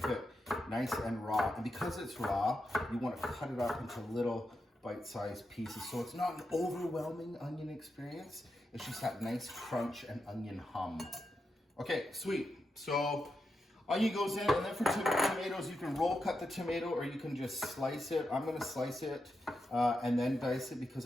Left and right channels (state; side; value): normal; both; correlation 0.86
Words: it nice and raw. And because it's raw, you want to cut it up into little bite-sized pieces. So it's not an overwhelming onion experience. It's just that nice crunch and onion hum. Okay, sweet. So onion goes in, and then for tomatoes, you can roll cut the tomato or you can just slice it. I'm going to slice it and then dice it because